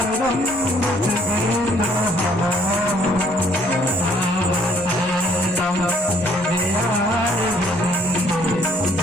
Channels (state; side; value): normal; both; correlation 0.63